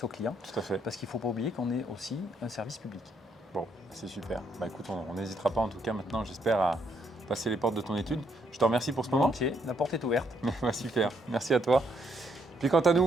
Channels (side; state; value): both; normal; correlation 0.73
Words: aux clients. Tout à fait. Parce qu'il ne faut pas oublier qu'on est aussi un service public. Bon, c'est super. Bah écoute, on n'hésitera pas en tout cas maintenant, j'espère, passer les portes de ton étude. Je te remercie pour ce moment. Volontiers, la porte est ouverte. Super, merci à toi. Puis quant à